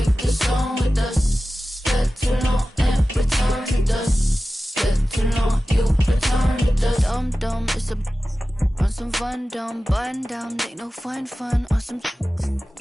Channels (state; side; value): normal; both; correlation 0.95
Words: the song with us. Step too long and return to dust. Step too long, you return to dust. Dumb, it's a on some fun, dumb, button down, ain't no fun on some